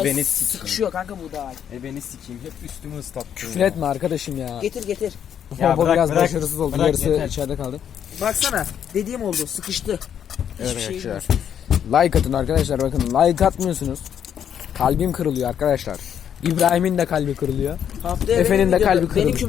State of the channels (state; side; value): quieter; right; 8.9 dB